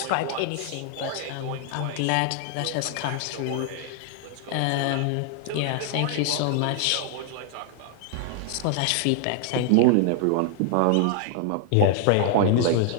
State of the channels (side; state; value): both; different; correlation 0.00